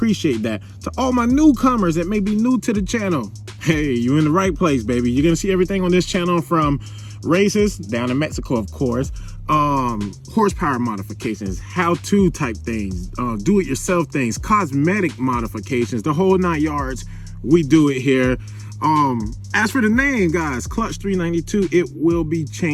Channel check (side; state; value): both; identical; correlation 1.00